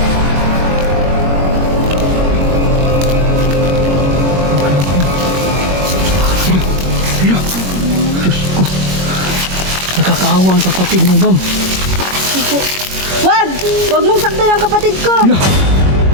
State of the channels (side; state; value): left; late; 21 ms